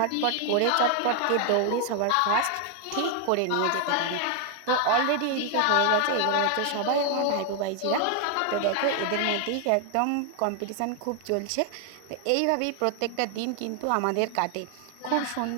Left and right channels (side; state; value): both; different; correlation 0.00